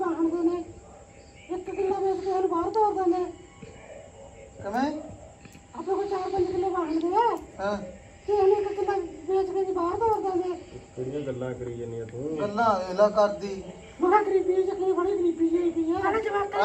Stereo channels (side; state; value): both; identical; correlation 1.00